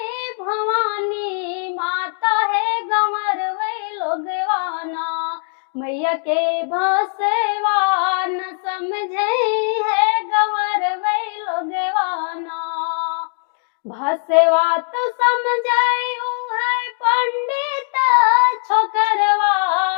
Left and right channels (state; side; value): silent; right; 62 dB below the other